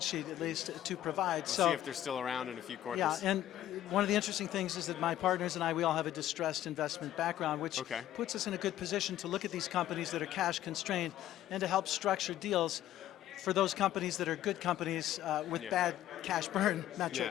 sheet, at least, to provide. We'll see if they're still around in a few quarters. Yeah, and one of the interesting things is that my partners and I, we all have a distressed investment background, which puts us in a good position to look at these companies that are cash constrained and to help structure deals for those companies that are good companies with bad cash burn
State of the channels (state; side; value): quieter; right; 12.8 dB